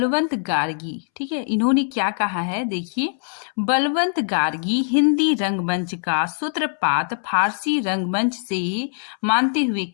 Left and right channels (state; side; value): silent; right; 64 dB below the other